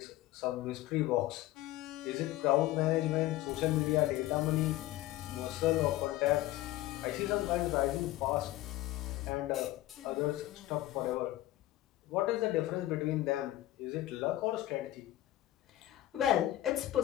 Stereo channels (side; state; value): right; quieter; 15.5 dB